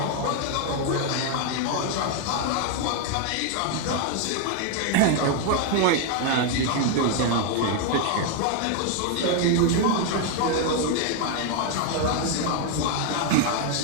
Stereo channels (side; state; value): both; different; correlation 0.01